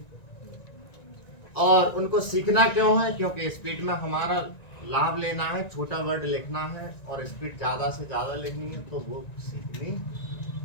और उनको सीखना क्यों है? क्योंकि स्पीड में हमारा लाभ लेना है, छोटा वर्ड लिखना है, और स्पीड ज्यादा से ज्यादा लिखनी है, तो वो सीखनी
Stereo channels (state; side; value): late; right; 1.9 ms